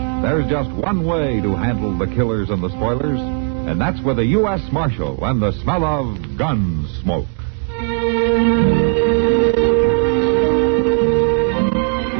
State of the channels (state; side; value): quieter; left; 36.7 dB